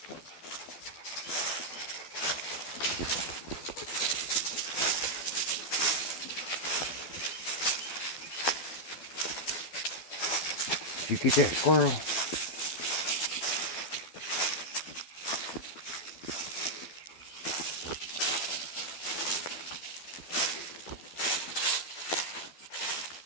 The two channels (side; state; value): right; late; 12 ms